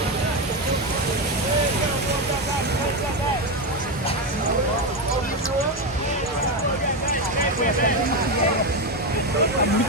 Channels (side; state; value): both; normal; correlation 0.11